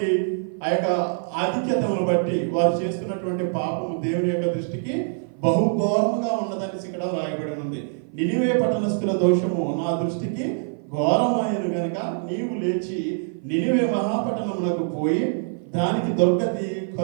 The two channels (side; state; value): left; silent; 55 dB below the other